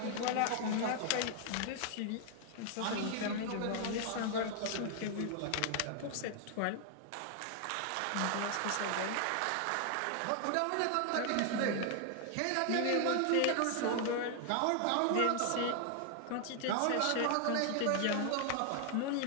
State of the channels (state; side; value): different; both; correlation 0.00